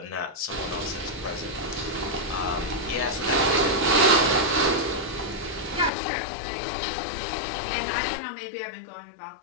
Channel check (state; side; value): drops out; right; at 5.9 s